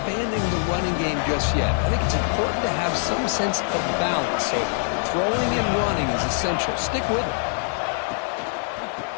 the running game just yet. I think it's important to have some sense of balance. So throwing and running is essential. Stick with it.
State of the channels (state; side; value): silent; right; 63 dB below the other